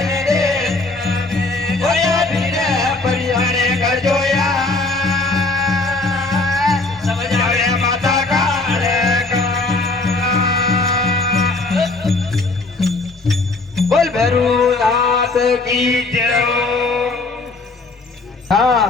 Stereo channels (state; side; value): quieter; right; 3.3 dB